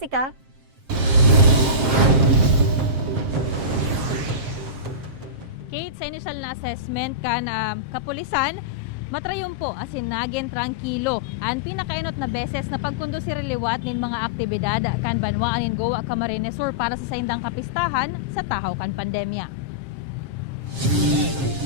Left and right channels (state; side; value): late; left; 7.5 ms